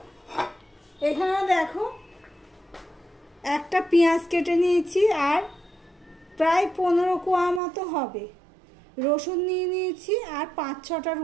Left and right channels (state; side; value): drops out; left; at 7.6 s